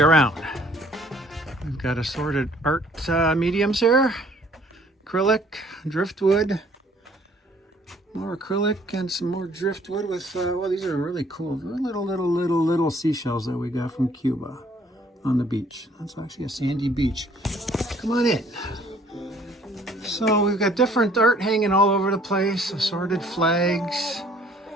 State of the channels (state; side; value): normal; both; correlation 0.59